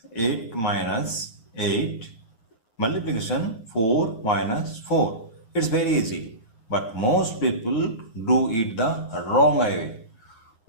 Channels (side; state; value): right; late; 9.4 ms